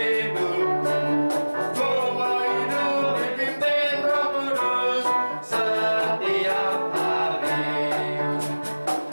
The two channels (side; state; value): both; inverted; correlation -1.00